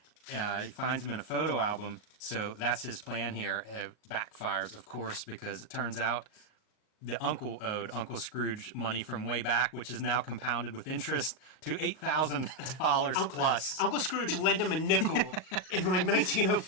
He finds him in a photo album, so that's his plan here. It backfires, of course, because it turns out the uncle owed Uncle Scrooge money from way back, which is now compounded with interest to $8,000 plus. Uncle Scrooge lent him a nickel in like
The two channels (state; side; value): late; right; 38 ms